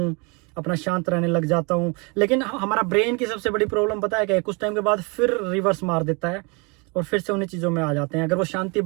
अपना शांत रहने लग जाता हूँ। लेकिन हमारा ब्रेन की सबसे बड़ी प्रॉब्लम पता है क्या है, कुछ टाइम के बाद फिर रिवर्स मार देता है और फिर से उन्हीं चीज़ों में आ जाते हैं। अगर वो शांति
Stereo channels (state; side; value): quieter; left; 31.0 dB